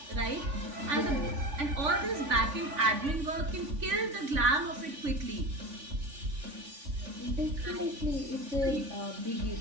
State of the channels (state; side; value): late; left; 3.5 ms